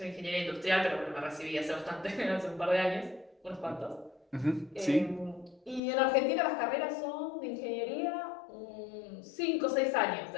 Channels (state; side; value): drops out; right; at 5.8 s